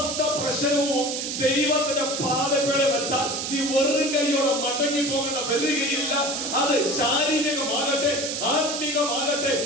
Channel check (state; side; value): noise; right; hiss, 3 dB below the sound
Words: പ്രശ്നവും ദൈവത്തിന്റെ പാദപ്പേടെ വെച്ചാൽ നീ വെറും കൈയോടെ മടങ്ങി പോകേണ്ട വരികയില്ല. അത് ശാരീരികമാകട്ടെ, ആത്മീകമാകട്ടെ,